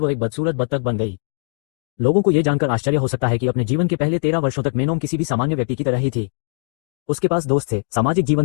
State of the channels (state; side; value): silent; right; digital silence